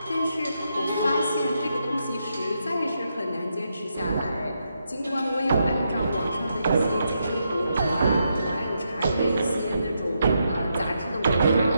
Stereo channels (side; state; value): both; inverted; correlation -0.82